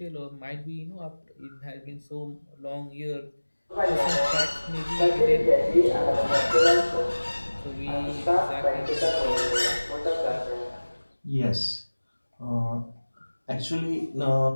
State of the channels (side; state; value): both; inverted; correlation -1.00